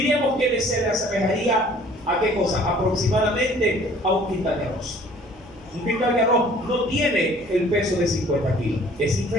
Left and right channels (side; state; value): left; noise; hum, 25 dB below the sound